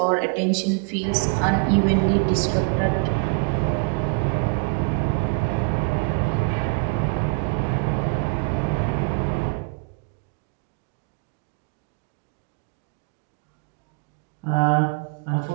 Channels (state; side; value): quieter; left; 31.4 dB